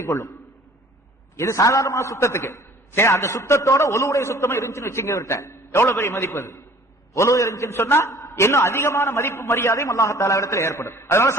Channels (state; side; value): normal; both; correlation 0.51